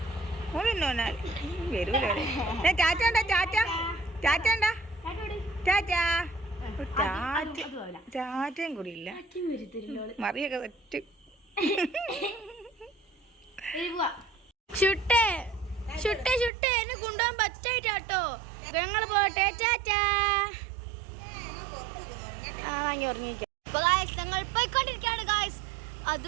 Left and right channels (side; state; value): left; drops out; at 16.5 s